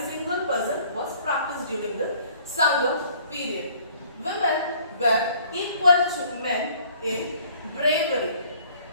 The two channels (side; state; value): both; inverted; correlation -0.56